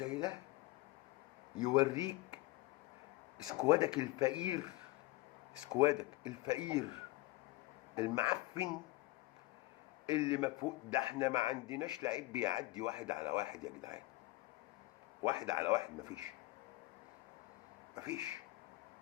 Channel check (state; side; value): quieter; right; 19.8 dB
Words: ده يوريك سكوادك الفقير، سكوادك الفقير المعفن اللي مفهوم. ده احنا ما عندناش لعيب بيعدي واحد على واحد يا جدعان، واحد على واحد مفيش. مفيش.